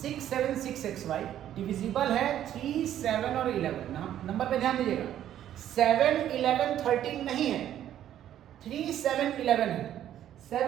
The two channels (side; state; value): left; quieter; 11.3 dB